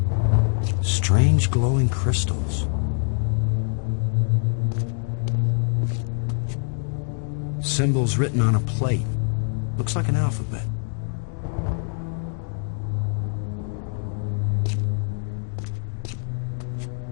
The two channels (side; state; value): right; silent; 60 dB below the other